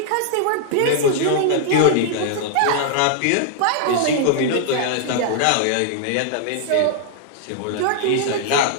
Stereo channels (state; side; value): different; both; correlation -0.01